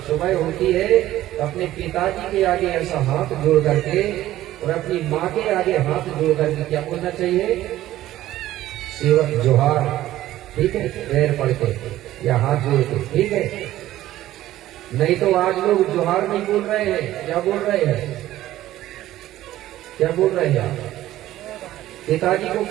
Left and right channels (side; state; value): left; quieter; 14.4 dB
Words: सुबह होती है तो अपने पिताजी के आगे ऐसा हाथ जोड़ करके और अपनी माँ के आगे हाथ जोड़ करके क्या बोलना चाहिए, सेवक जोहार, ठीक है, पैर पड़ के या हाथ जोड़ के, ठीक है। नहीं तो आज लोग जोहार नहीं बोल रहे हैं, क्या बोल रहे हैं, क्या बोल रहे हैं, पिताजी को